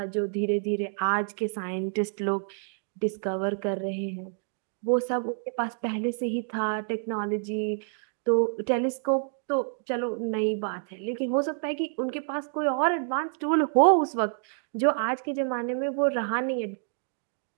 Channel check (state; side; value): silent; left; digital silence